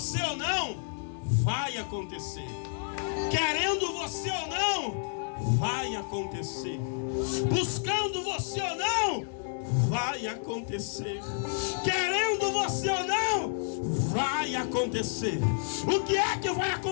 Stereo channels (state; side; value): silent; right; 58 dB below the other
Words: ou não, vai acontecer. Querendo você ou não, vai acontecer. Buscando você ou não, vai acontecer. Querendo você ou não, vai acontecer. O que é que vai